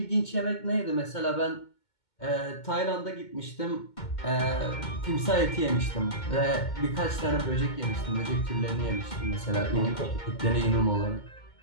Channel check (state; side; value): late; right; 2.2 ms